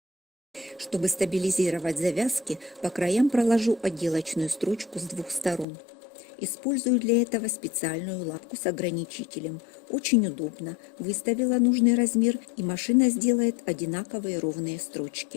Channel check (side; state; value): right; drops out; at 5.7 s